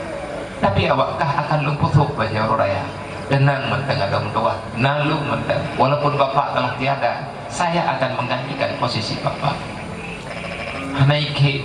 tapi awakkah akan long putuk baca orang raya. Denang mentang ada tua, nalung mentang. Walaupun bapak telah tiada, saya akan menggantikan posisi bapak. Hana ikli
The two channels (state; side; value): identical; both; correlation 1.00